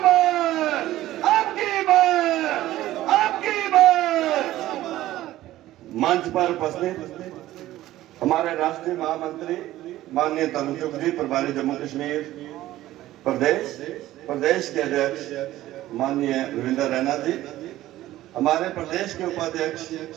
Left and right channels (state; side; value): quieter; left; 15.0 dB